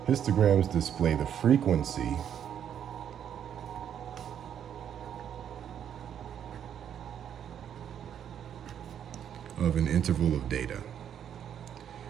Histograms display the frequency of an interval of data.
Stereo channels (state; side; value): quieter; left; 9.2 dB